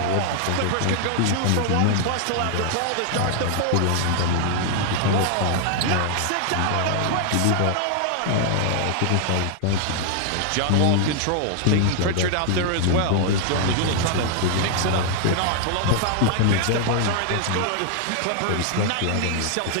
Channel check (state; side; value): different; both; correlation 0.00